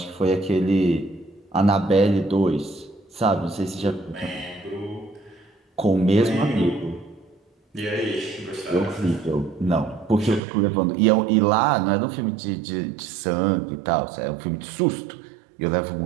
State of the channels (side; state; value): left; drops out; at 10.4 s